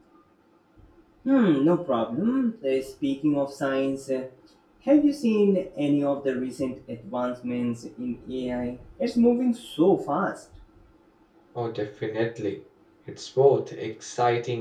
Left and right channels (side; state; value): both; identical; correlation 1.00